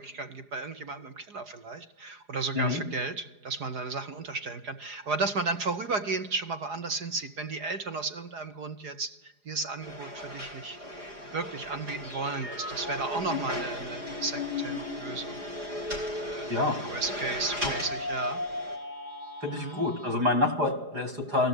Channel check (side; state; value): left; late; 4.9 ms